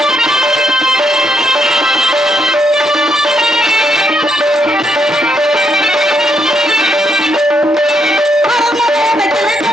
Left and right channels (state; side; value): normal; both; correlation 0.76